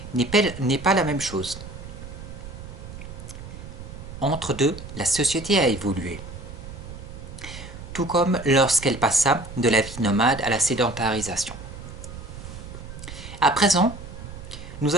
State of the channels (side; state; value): right; noise; rumble, 12 dB below the sound